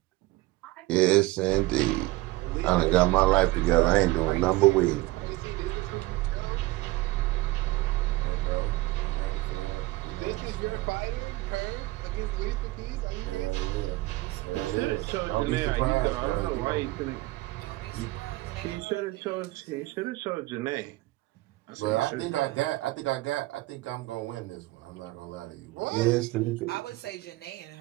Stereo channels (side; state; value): left; quieter; 19.6 dB